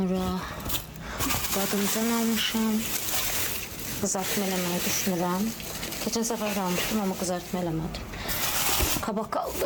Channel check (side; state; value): both; identical; correlation 1.00